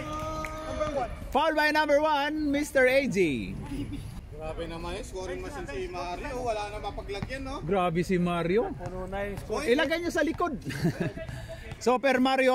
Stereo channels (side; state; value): both; identical; correlation 1.00